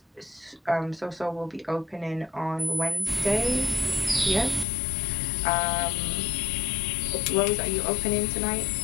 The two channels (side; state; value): right; drops out; at 4.7 s